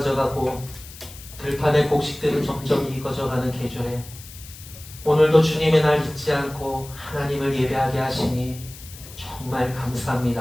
들판의 곡식들은 점점 익어져가는 계절에 오늘도 주님의 날 잊지 않고 하나님을 예배하게 하시니 정말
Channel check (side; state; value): left; noise; hiss, 17 dB below the sound